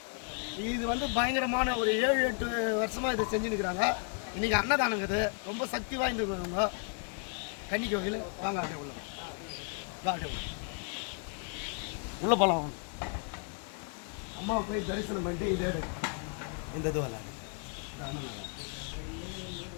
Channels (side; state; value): right; quieter; 39.5 dB